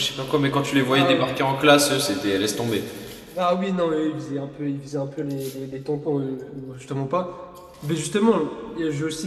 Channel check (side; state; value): both; identical; correlation 1.00